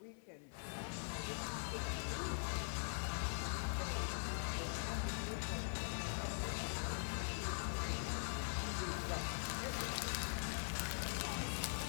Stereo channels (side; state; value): right; silent; digital silence